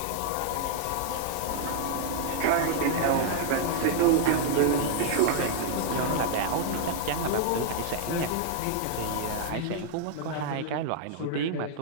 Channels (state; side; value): different; both; correlation -0.01